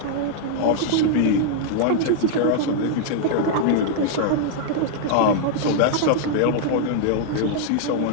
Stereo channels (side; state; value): both; different; correlation -0.01